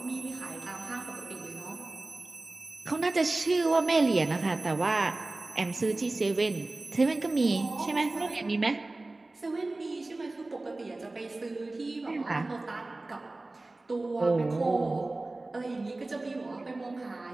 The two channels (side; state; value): left; quieter; 3.0 dB